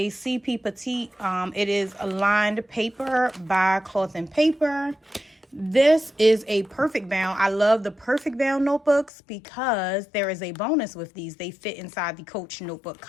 CP Petite. It is a lined paper by Cloth and Paper. This is a perfect bound. I love the perfect bound notebooks because there is a bonus with these. They fit inside the Coach notebook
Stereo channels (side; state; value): right; drops out; at 9.1 s